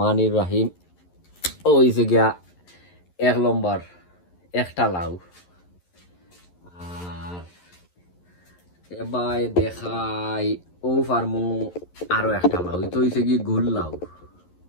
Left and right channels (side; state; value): right; late; 11 ms